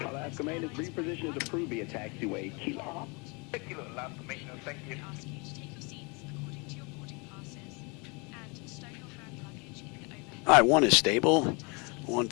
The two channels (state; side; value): quieter; right; 30.5 dB